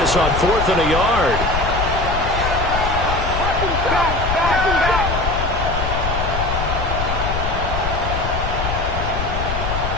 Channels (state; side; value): noise; left; rumble, 3 dB below the sound